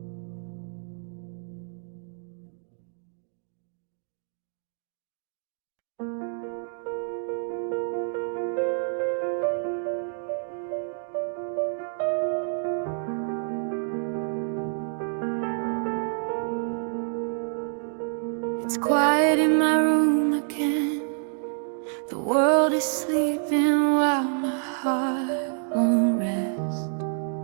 It's quiet in my room again. The world is sleeping while my heart won't rest.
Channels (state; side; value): silent; left; 60 dB below the other